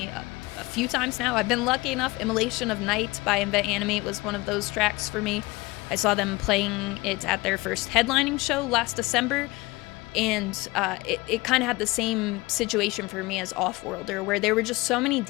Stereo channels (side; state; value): right; quieter; 22.1 dB